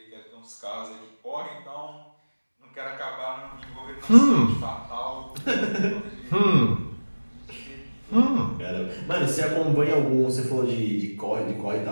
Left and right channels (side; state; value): both; inverted; correlation -1.00